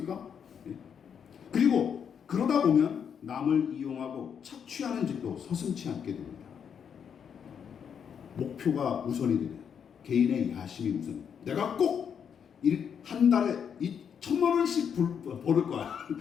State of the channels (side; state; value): right; quieter; 7.6 dB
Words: 그리고 그러다 보면 남을 이용하고 착취하는 짓도 서슴지 않게 됩니다. 목표가 우선이 되면 개인의 야심이 우선. 내가 꼭 한 달에 1,000만 원씩 벌을 거야.